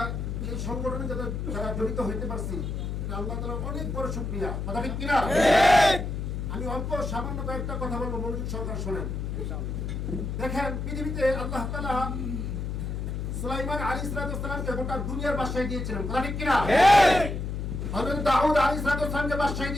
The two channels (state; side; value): noise; left; hum, 3 dB below the sound